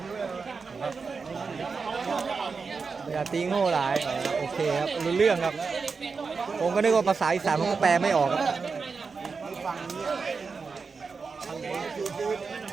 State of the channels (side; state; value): left; quieter; 4.9 dB